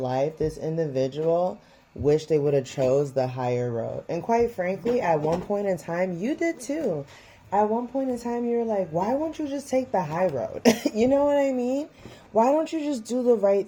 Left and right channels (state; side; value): identical; both; correlation 1.00